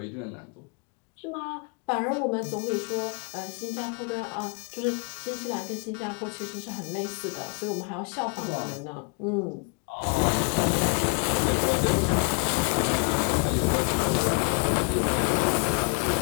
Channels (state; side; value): quieter; right; 36.1 dB